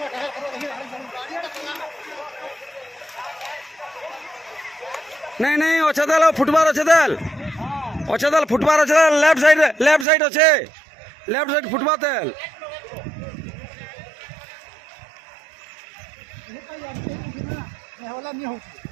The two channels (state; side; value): drops out; left; at 10.1 s